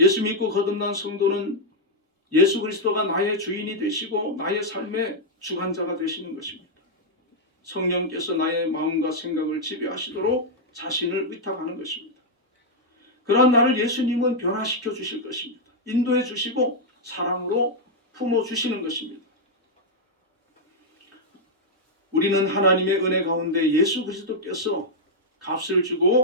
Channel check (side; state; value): both; normal; correlation -0.03